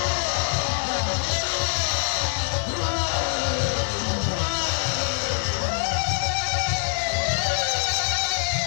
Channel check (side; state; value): right; silent; 60 dB below the other